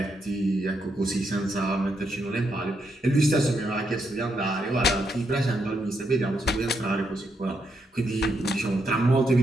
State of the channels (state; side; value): normal; both; correlation 0.79